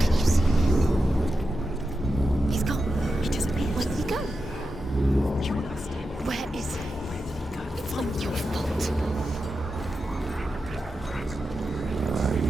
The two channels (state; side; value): normal; both; correlation 0.89